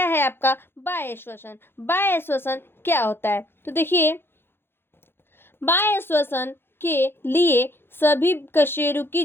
है आपका बाह्य श्वसन। बाह्य श्वसन क्या होता है, तो देखिए बाह्य श्वसन के लिए सभी कशेरुकी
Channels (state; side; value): late; right; 0.11 ms